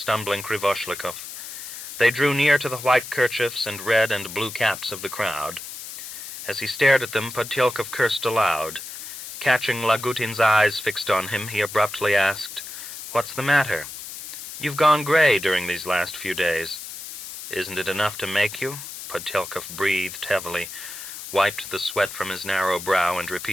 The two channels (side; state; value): left; noise; hiss, 10 dB below the sound